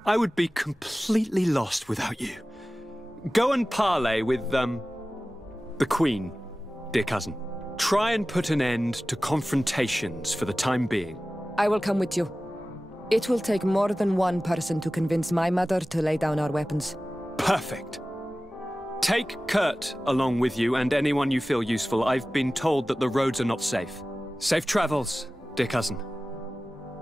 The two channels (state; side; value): normal; both; correlation 0.96